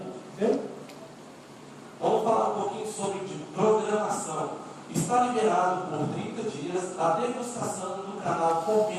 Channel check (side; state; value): both; identical; correlation 1.00